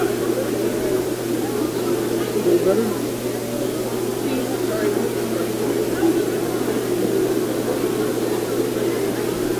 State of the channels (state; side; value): identical; both; correlation 1.00